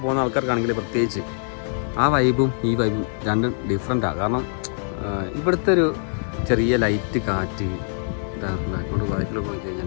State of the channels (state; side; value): silent; right; digital silence